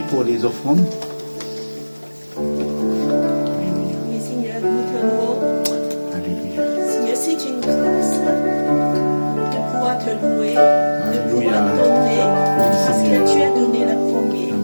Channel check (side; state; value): both; inverted; correlation -1.00